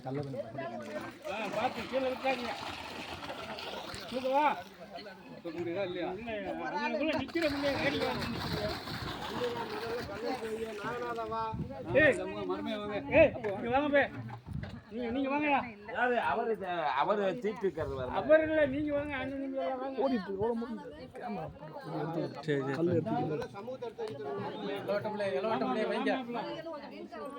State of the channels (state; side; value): identical; both; correlation 1.00